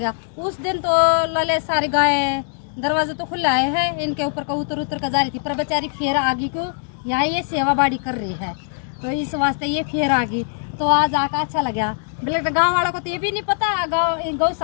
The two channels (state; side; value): silent; right; digital silence